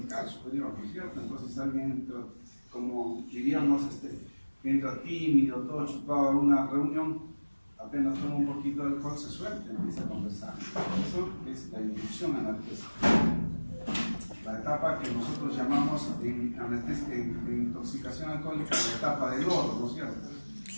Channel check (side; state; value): both; inverted; correlation -1.00